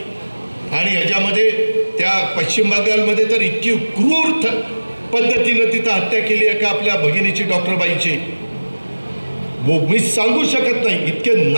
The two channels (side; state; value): both; inverted; correlation -1.00